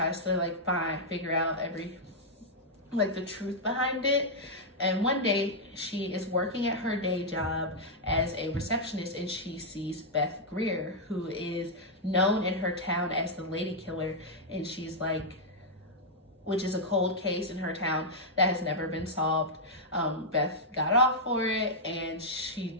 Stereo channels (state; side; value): normal; both; correlation -0.05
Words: to like figure out the truth behind it. And one day she is working at her day job as a receptionist, and she sees Beth Greer, who is known in her town as the lady killer. And she's like, which is a cold case in her town that has never been solved. Beth got off for it, and she